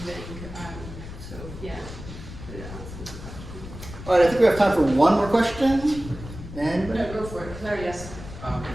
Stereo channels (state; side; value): noise; left; rumble, 12 dB below the sound